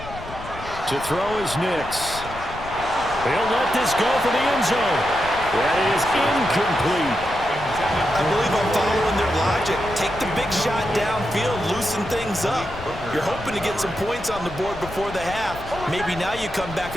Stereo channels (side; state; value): left; noise; rumble, 13 dB below the sound